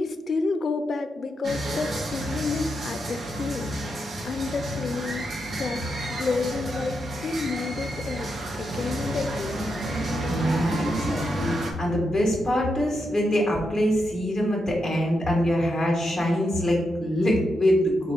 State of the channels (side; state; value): both; normal; correlation 0.84